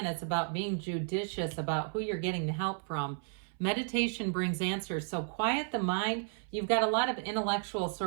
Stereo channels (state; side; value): silent; left; 56 dB below the other